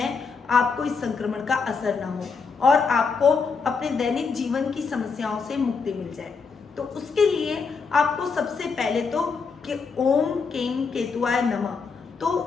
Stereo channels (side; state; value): right; quieter; 5.1 dB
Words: आपको इस संक्रमण का असर ना हो और आपको अपने दैनिक जीवन की समस्याओं से मुक्ति मिल जाए? तो उसके लिए आपको सबसे पहले तो कि ओम केम केतुआय नमः,